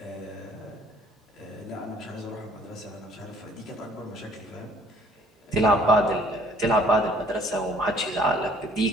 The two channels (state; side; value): normal; both; correlation 0.57